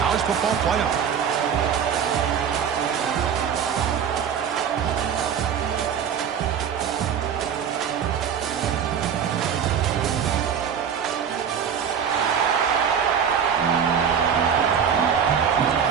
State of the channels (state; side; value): quieter; left; 7.8 dB